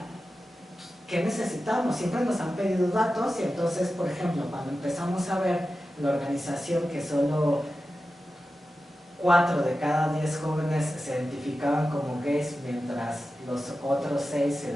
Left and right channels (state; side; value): normal; both; correlation 0.93